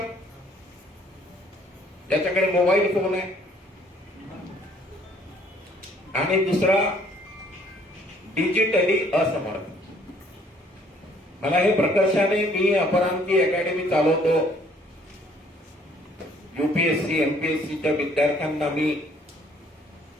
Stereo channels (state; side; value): normal; both; correlation 0.61